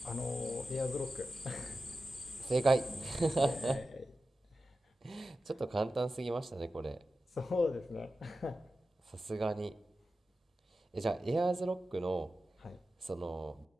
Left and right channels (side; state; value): both; normal; correlation 0.93